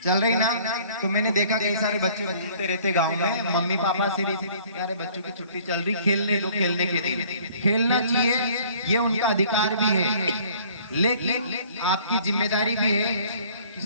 रही ना। तो मैंने देखा कई सारे बच्चे घूमते रहते गांव में, मम्मी पापा से यार बच्चों की छुट्टी चल रही, खेलने दो, खेलने के दिन खेलना चाहिए, ये उनका अधिकार भी है, लेकिन आपकी जिम्मेदारी भी है कि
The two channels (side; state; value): both; inverted; correlation -0.54